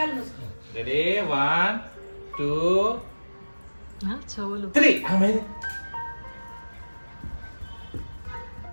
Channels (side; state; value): both; inverted; correlation -1.00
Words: మూసుకో. రెడీ 1 2 చెవులు 3. అమ్మే